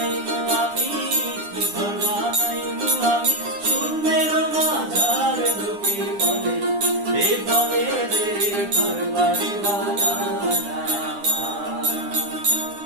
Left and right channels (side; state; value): left; late; 9.9 ms